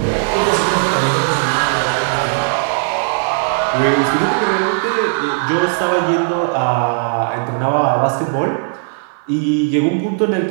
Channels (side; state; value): left; silent; 61 dB below the other